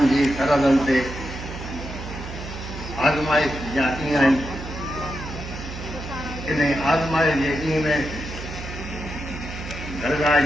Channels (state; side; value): noise; right; hum, 9 dB below the sound